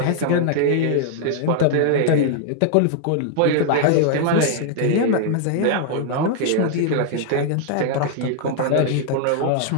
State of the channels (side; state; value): both; different; correlation 0.00